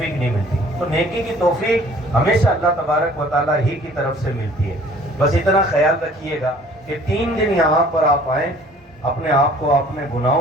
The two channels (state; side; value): normal; both; correlation 0.53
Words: نہیں ملتی، تو نیکی کی توفیق ہمیشہ اللہ تبارک و تعالیٰ ہی کی طرف سے ملتی ہے۔ بس اتنا خیال رکھیے گا کہ 3 دن یہاں پر آپ آئیں، اپنے آپ کو اپنے